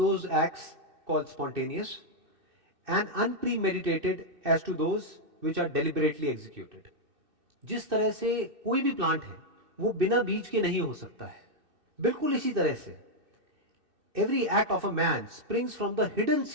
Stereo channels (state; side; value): late; left; 2.6 ms